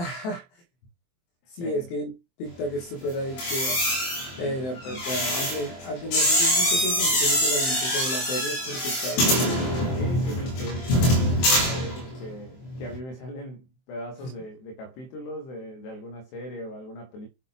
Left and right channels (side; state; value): right; late; 23 ms